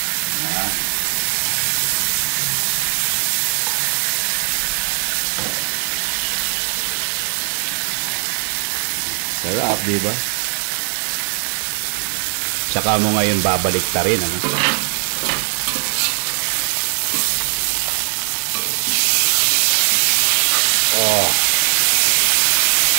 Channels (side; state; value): left; silent; 58 dB below the other